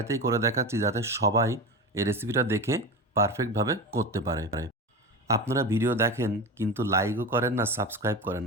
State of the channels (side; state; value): both; normal; correlation 0.25